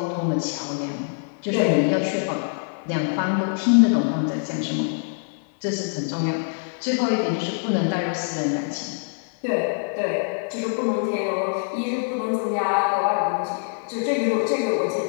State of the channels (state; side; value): silent; right; digital silence